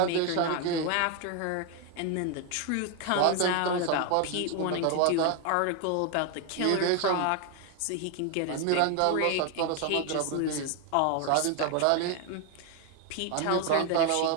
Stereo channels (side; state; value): both; different; correlation 0.01